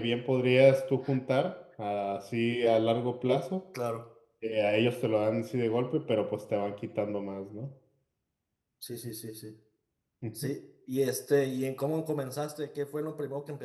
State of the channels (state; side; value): identical; both; correlation 1.00